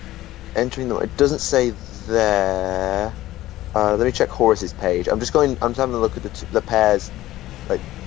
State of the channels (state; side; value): quieter; right; 15.5 dB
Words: Entering the... It doesn't say there. Let me check Horus's page. I'm having a look at the pairs, like